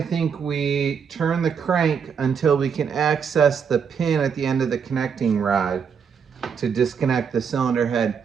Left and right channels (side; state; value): left; quieter; 6.7 dB